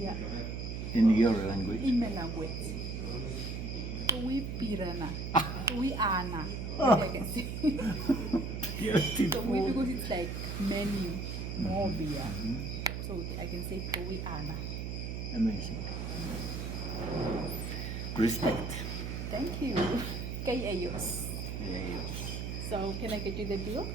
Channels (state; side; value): noise; right; hum, 4 dB below the sound